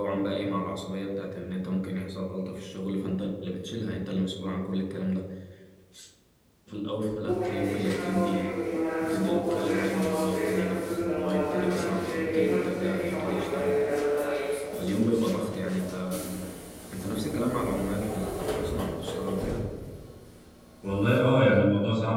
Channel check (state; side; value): identical; both; correlation 1.00